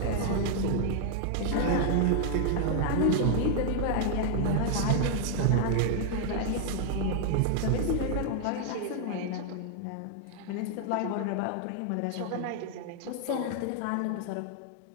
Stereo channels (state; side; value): different; both; correlation 0.00